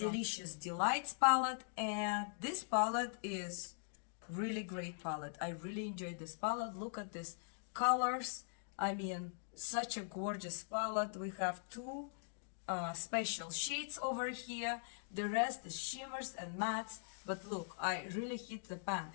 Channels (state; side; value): silent; right; digital silence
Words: Delights palette, and this palette is really great palette. I really enjoyed this palette. Look at this colors. I mean, such a gorgeous palette. We have two special shades over here. The rest is shimmers and mattes. But look, I really hit the pan,